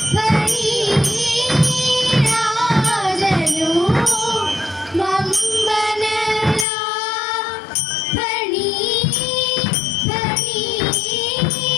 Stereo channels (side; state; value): right; drops out; at 6.7 s